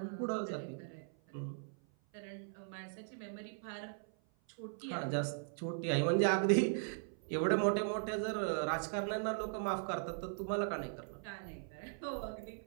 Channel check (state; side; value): silent; left; 52 dB below the other